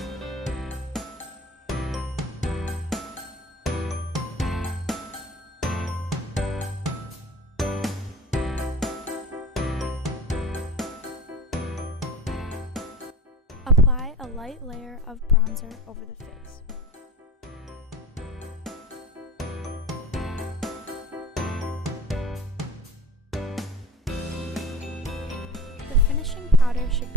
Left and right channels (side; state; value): both; normal; correlation 0.37